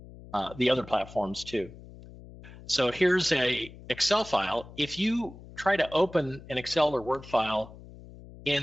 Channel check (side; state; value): left; noise; hum, 18 dB below the sound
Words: the other platforms too. So here's a Excel file. If you try to open an Excel or Word file